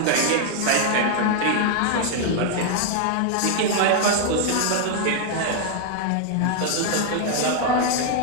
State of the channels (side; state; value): both; different; correlation 0.00